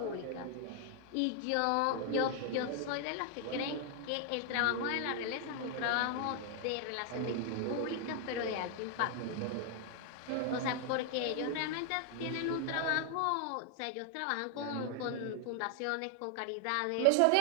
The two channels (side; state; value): both; different; correlation 0.00